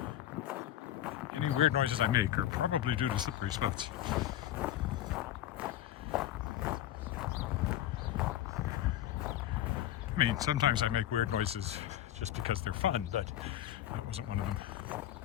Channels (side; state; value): right; quieter; 12.4 dB